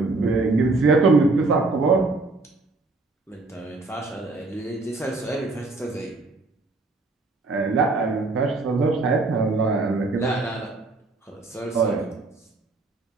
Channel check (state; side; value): quieter; left; 3.4 dB